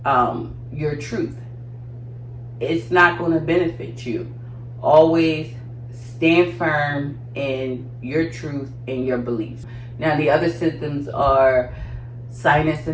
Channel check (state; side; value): identical; both; correlation 1.00